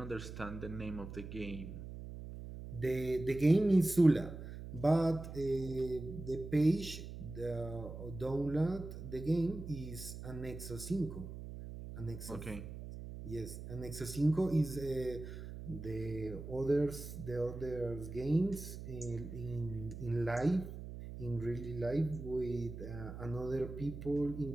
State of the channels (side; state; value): right; noise; hum, 10 dB below the sound